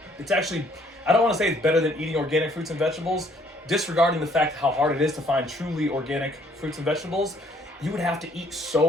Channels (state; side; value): normal; both; correlation 0.64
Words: It's actually, I don't want to say it's better than eating organic fruits and vegetables, disregarding the fact how hard it is to find truly organic fruits and vegetables. You would have to eat